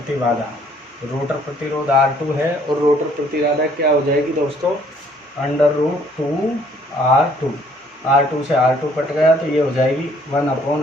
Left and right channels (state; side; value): normal; both; correlation 0.62